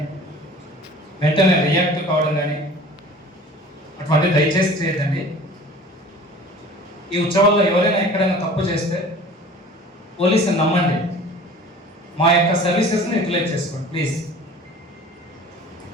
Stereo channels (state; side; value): normal; both; correlation 0.44